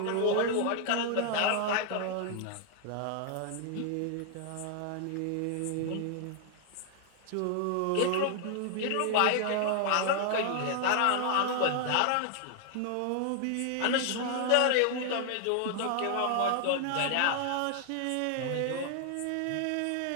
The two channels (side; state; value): both; different; correlation 0.00